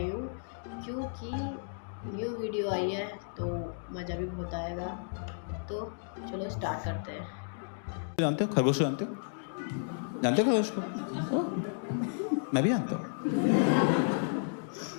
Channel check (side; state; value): right; silent; digital silence